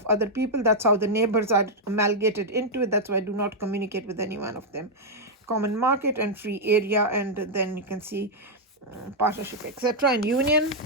other people. That's how the neighbors are amalgamated into it. That's why I do not communicate with any one of them. Common market and free area, and then you can see partnership, etc., and union.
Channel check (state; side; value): normal; both; correlation -0.03